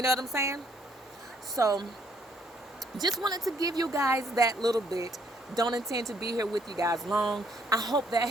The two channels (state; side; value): normal; both; correlation 0.67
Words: know what I'm saying? So just wanted to give you guys that little bit. Don't intend to be here with you guys long. I hope that